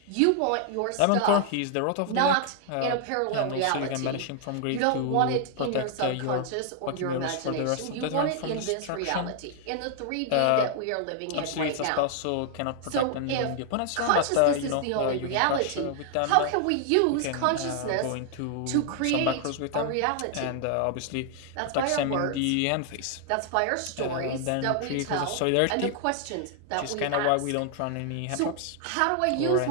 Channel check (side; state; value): both; different; correlation 0.00